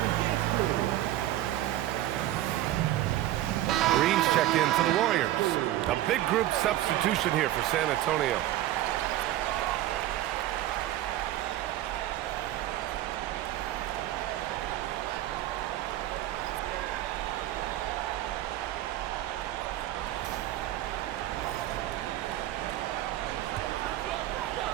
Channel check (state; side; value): quieter; left; 14.2 dB